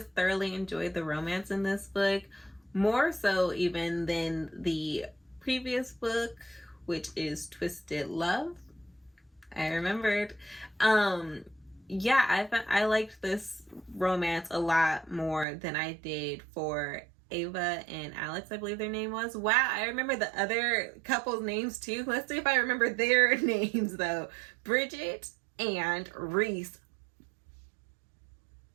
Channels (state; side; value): drops out; left; at 15.5 s